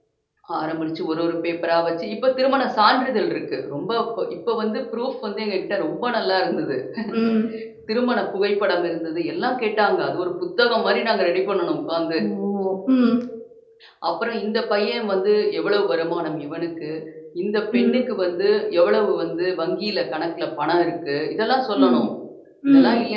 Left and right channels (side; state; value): both; identical; correlation 1.00